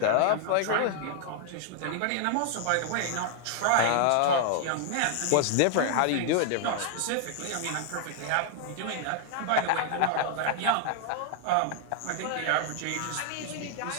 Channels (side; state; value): both; different; correlation 0.00